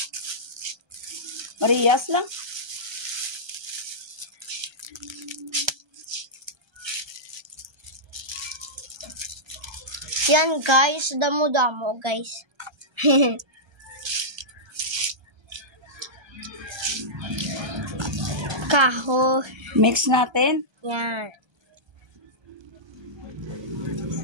Marias lang. Yan guys, damo-damo guys. Kahoy. Mix natin. Yan.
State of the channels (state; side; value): late; left; 1.3 ms